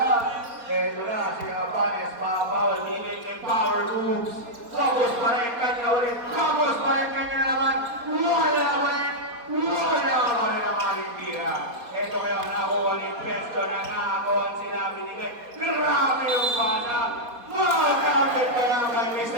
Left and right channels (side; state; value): left; late; 4.2 ms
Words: Ito na, si Habanes, babawal. Binigay niya power moves. Tapos pa rin kanya ulit. Tapos pa rin kanya naman. Wala pa rin. Wala pa rin naman yung tira. Ito ngayon, nakuha ni Presto na nakakuha sila binigay. Grabe yung pasa. Makakapit kaya kay